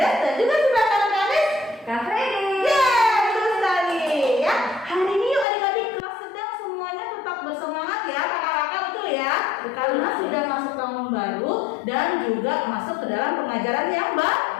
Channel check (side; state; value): right; drops out; at 5.5 s